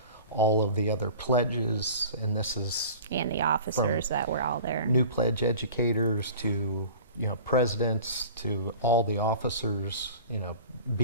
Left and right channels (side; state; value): both; inverted; correlation -0.41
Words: all of the other pledges. And this is And the officers that were all there. new pledge educators to presidents, to all the officers,